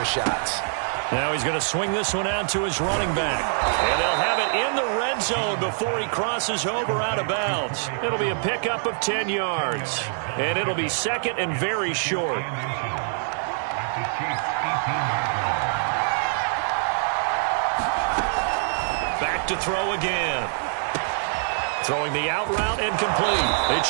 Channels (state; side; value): silent; left; 62 dB below the other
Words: shots. Now he's going to swing this one out to his running back. And they'll have it in the red zone before he crosses over out of bounds. It'll be a pickup of 10 yards. And it'll be second and very short. Back to throw again. Throwing the out route and complete. It's